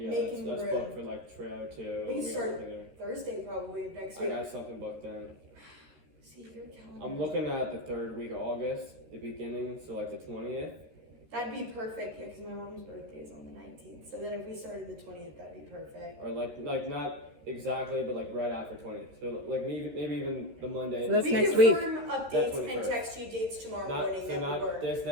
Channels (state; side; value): late; left; 13 ms